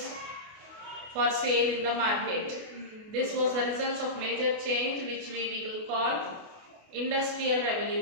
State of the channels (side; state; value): left; late; 28 ms